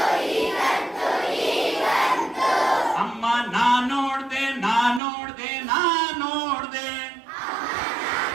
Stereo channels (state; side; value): drops out; left; at 5.0 s